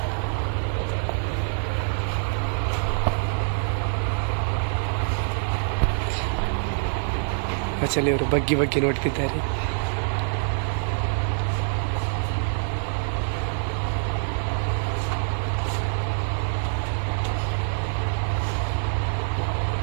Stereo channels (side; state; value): left; silent; 59 dB below the other